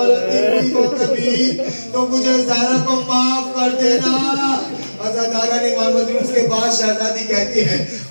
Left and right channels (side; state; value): both; inverted; correlation -1.00